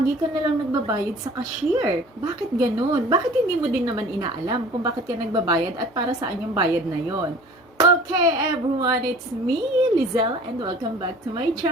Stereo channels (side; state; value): both; normal; correlation 0.46